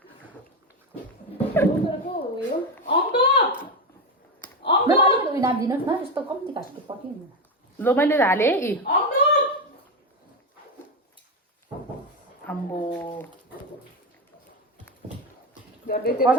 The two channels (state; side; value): normal; both; correlation 0.14